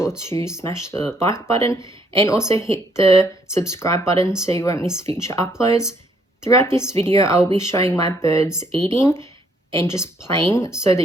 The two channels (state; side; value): normal; both; correlation 0.68